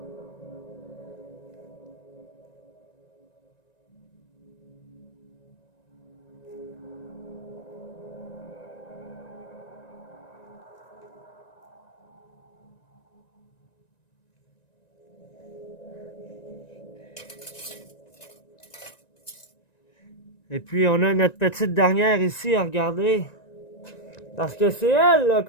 Et puis, on a notre petite dernière ici à regarder. Parce que c'est elle là,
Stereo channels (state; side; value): late; right; 1.9 ms